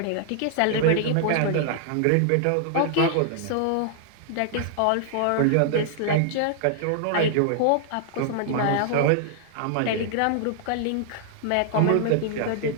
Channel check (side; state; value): both; different; correlation -0.01